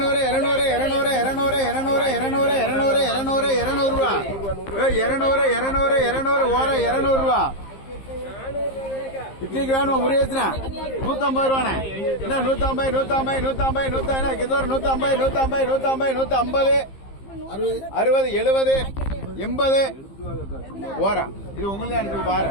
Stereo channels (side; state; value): right; late; 15 ms